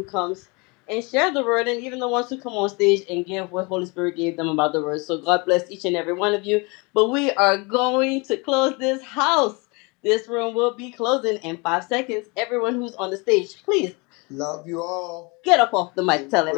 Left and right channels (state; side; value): quieter; right; 28.6 dB